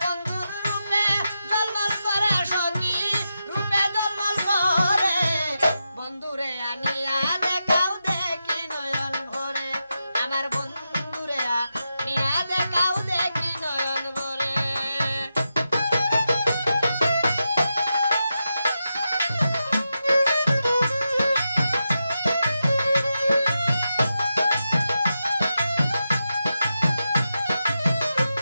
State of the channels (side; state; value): both; inverted; correlation -0.88